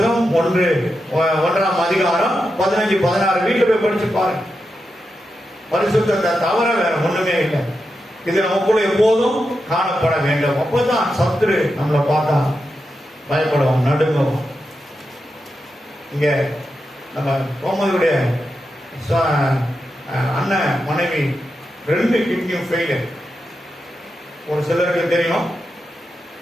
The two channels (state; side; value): normal; both; correlation 0.88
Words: 1ஆம் அதிகாரம் 15-16 வீட்டில் போய் படிச்சு பாருங்க. பரிசுத்தத்தை தவிர வேற ஒண்ணுமே இல்லை. இது நமக்குள்ள எப்போதும் காணப்பட வேண்டும். அப்பதான் சத்துரு நம்மளை பார்த்தா பயப்படுவோம், நடுங்கும். இங்க நம்ம கோமதியுடைய அண்ணன் மனைவி 2 கிட்னியும் ஃபெயிலியர். ஒரு சிலருக்கு தெரியும்.